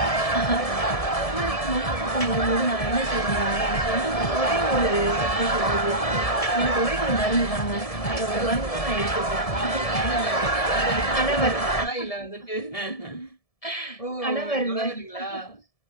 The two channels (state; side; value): late; right; 1.7 ms